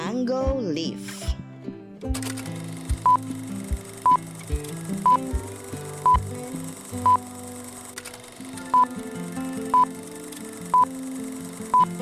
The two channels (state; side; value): identical; both; correlation 1.00